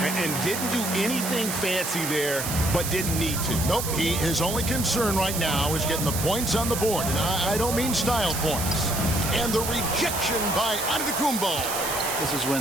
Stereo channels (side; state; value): right; noise; hiss, 4 dB below the sound